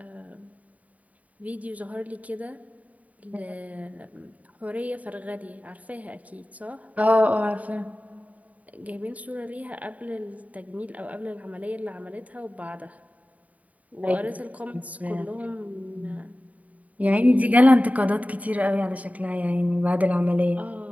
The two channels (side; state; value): left; late; 0.070 ms